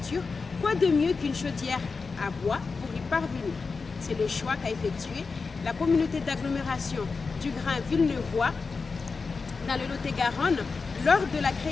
Quoi de mieux qu'une chaudière à bois pour y parvenir? C'est le choix qu'a effectué la communauté d'agglomération du Grand Villeneuvois dans le Lot-et-Garonne lors de la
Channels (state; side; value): quieter; right; 4.5 dB